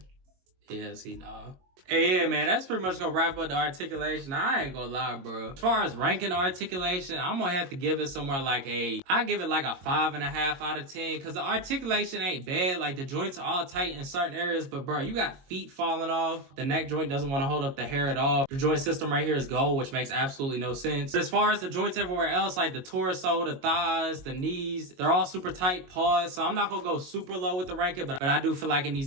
Yeah, see, nah. Hey, yeah, man, that's pretty much gonna wrap up the articulation. I ain't gonna lie, bro. As far as ranking articulation, I'm gonna have to give it somewhere like I give it like a 5.5 out of 10, because the articulation ain't bad. Like, the joints are all tight in certain areas, but bro, you got feet falling off. The neck joint doesn't want to hold up the hair at all. The joint system right here is gold, which makes absolutely no sense. But as far as the joints everywhere else, like the torso, the thighs, the knees, they're all super tight paws. So I'm not gonna go super low with the ranking, but I do feel like it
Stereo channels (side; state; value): left; late; 22 ms